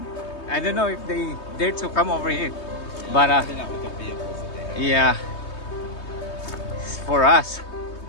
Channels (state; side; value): late; right; 3.2 ms